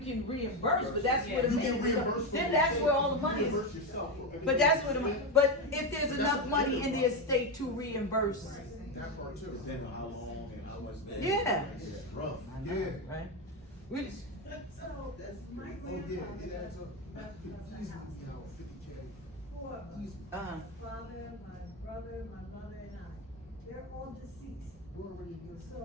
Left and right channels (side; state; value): both; normal; correlation 0.12